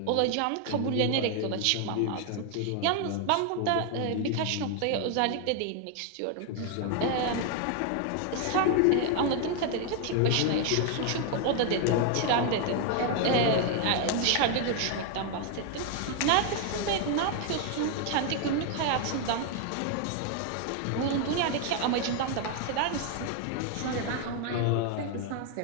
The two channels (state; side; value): different; both; correlation 0.00